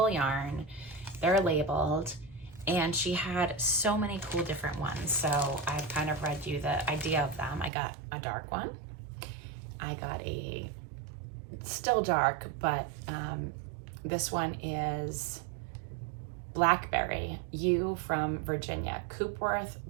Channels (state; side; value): drops out; left; at 7.7 s